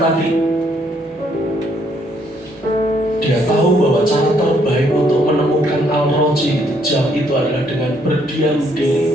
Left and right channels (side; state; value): both; normal; correlation 0.69